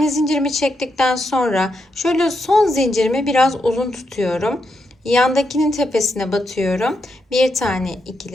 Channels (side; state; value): both; normal; correlation 0.83